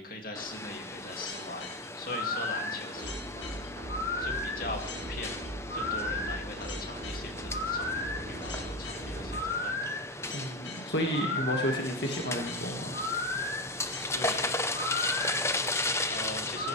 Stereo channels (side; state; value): both; normal; correlation 0.15